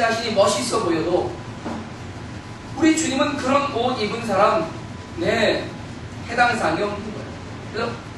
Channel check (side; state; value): both; identical; correlation 1.00